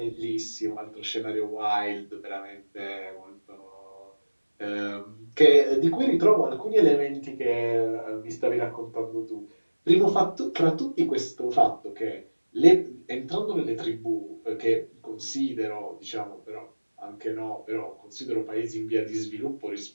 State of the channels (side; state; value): both; inverted; correlation -1.00